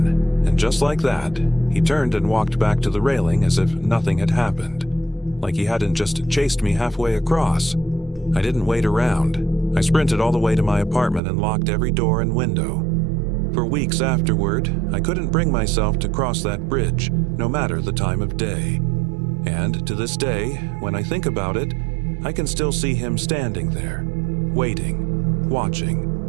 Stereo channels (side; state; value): left; drops out; at 11.2 s